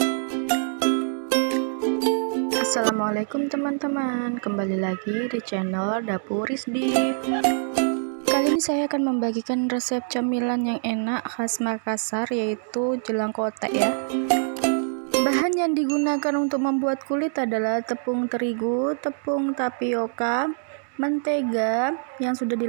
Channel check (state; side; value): silent; left; digital silence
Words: teman-teman, kembali lagi di channel Dapur Rizdi. Kali ini saya akan membagikan resep camilan yang enak khas Makassar, yaitu jelang kotek ya. Bahan yang digunakan untuk membuat kulit adalah tepung terigu, tepung tapioka, mentega yang sudah